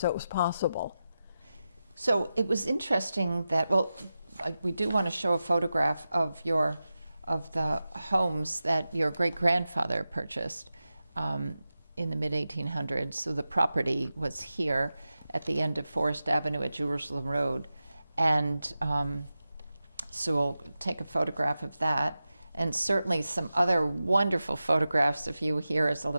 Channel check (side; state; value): both; inverted; correlation -0.92